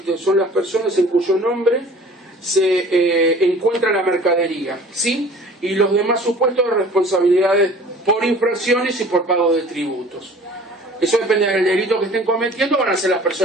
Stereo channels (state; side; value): normal; both; correlation 0.47